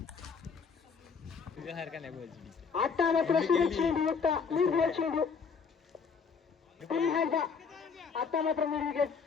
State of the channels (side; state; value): right; quieter; 5.7 dB